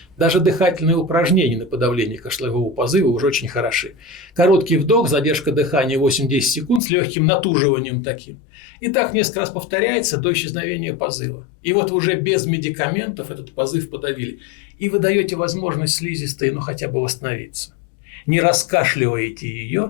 даже дыхательные упражнения на подавление кашлевого позыва уже очень хороши. Короткий вдох, задержка дыхания 8-10 секунд с легким натуживанием таким. И так несколько раз повторяется до исчезновения позыва. И вот уже без медикаментов этот позыв подавили. И вы даете возможность слизистой, хотя бы восстановиться. Не раскашливаете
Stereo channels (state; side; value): drops out; right; at 6.8 s